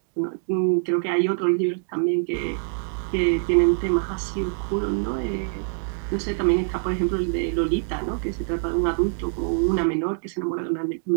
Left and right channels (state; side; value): silent; left; digital silence